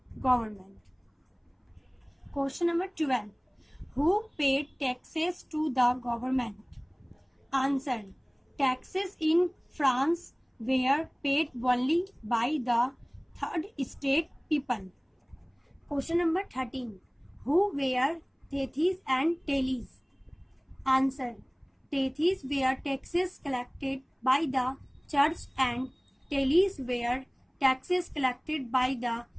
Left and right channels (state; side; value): identical; both; correlation 1.00